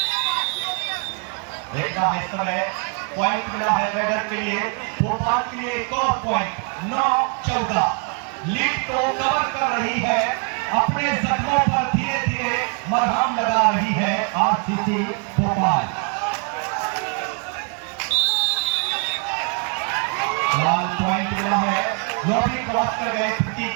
देखना है इस समय पॉइंट मिला है रेडर के लिए, भोपाल के लिए एक और पॉइंट। 9-14 लीड को कवर कर रही है, अपने जख्मों पर धीरे धीरे मरहम लगा रही है आरसीसी भोपाल। लाल पॉइंट मिला है, लॉबी क्रॉस कर गए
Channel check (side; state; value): left; quieter; 38.0 dB